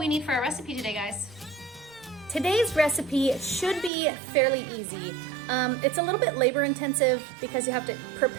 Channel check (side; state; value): left; drops out; at 3.9 s